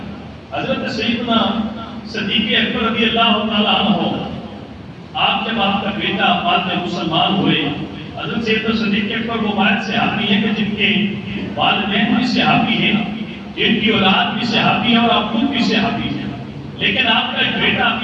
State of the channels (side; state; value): both; identical; correlation 1.00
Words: حضرت سیدنا صدیق اکبر رضی اللہ تعالیٰ عنہ، آپ جب آپ کا بیٹا بعد میں مسلمان ہوئے، حضرت سیدنا صدیق اکبر وہ واحد صحابی ہیں کہ جن کے والدین بھی صحابی ہیں، جن کی اولاد بھی صحابی ہے اور آپ خود بھی صحابی ہیں، لیکن آپ کا ایک بیٹا